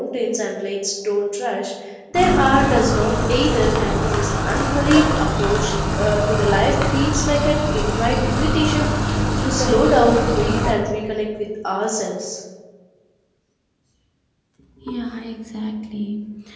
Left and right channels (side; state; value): both; identical; correlation 1.00